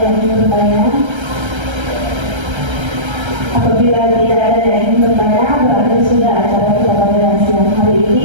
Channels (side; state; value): left; late; 1.3 ms